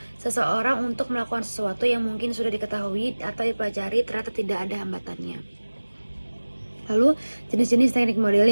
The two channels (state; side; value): inverted; both; correlation -1.00